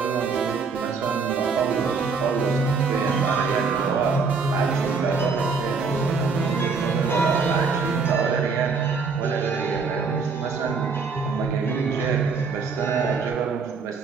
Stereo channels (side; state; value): left; quieter; 4.9 dB